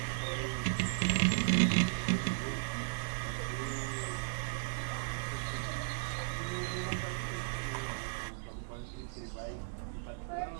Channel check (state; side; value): silent; left; digital silence